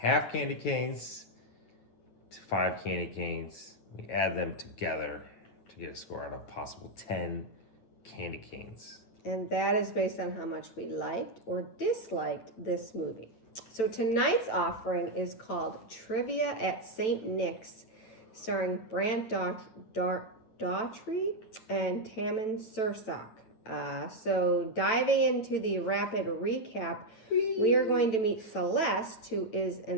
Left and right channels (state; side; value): late; right; 9.0 ms